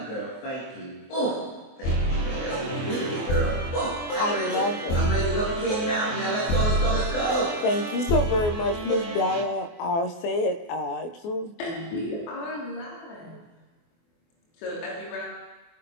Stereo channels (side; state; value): right; late; 24 ms